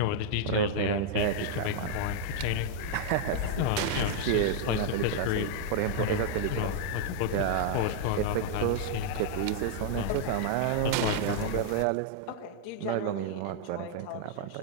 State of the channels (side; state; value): both; different; correlation -0.01